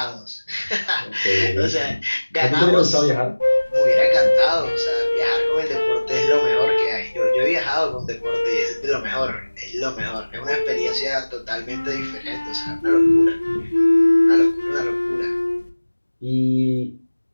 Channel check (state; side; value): inverted; both; correlation -1.00